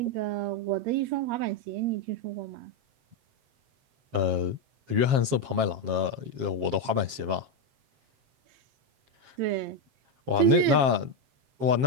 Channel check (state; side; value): late; left; 7.5 ms